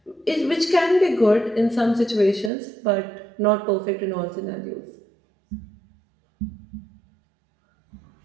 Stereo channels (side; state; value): left; drops out; at 2.5 s